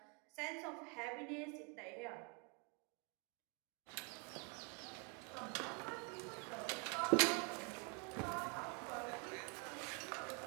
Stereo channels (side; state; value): left; quieter; 35.3 dB